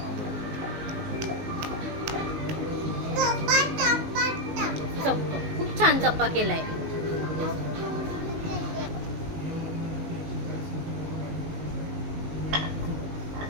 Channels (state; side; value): late; left; 19 ms